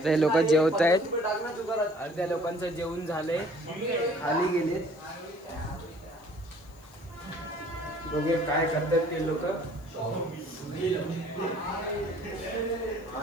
ते लोक जेवत आहेत. अर्ध्या लोकांचं जेवण झालंय, खाली गेलेत. बघूया काय करतात ते लोक.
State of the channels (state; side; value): noise; left; hiss, 28 dB below the sound